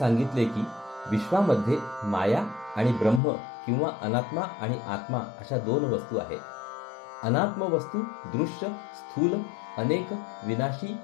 की विश्वामध्ये माया आणि ब्रह्म किंवा अनात्मा आणि आत्मा अशा दोन वस्तू आहेत. अनात्म वस्तू दृश्य, स्थूल, अनेक, विनाशी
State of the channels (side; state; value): right; drops out; at 3.2 s